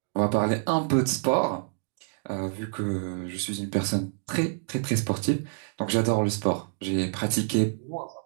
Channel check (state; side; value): silent; left; digital silence